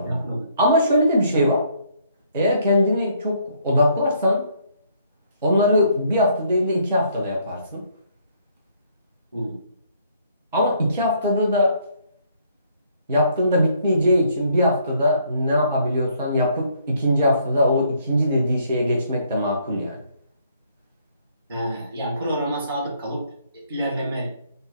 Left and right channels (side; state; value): both; inverted; correlation -0.66